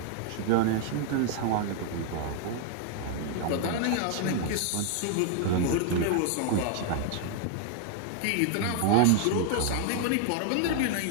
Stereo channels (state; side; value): different; both; correlation 0.00